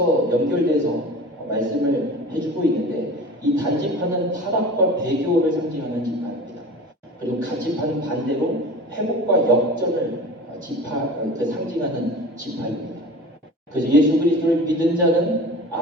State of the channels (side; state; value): both; normal; correlation 0.37